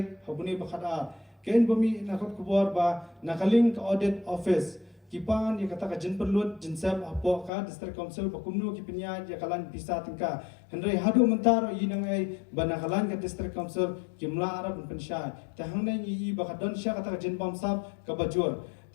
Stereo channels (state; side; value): drops out; right; at 7.5 s